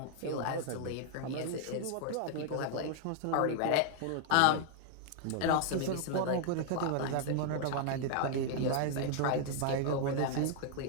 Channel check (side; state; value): both; different; correlation 0.00